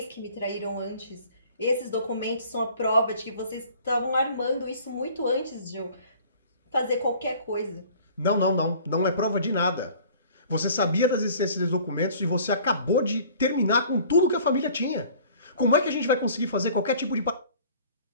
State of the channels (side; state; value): both; inverted; correlation -0.49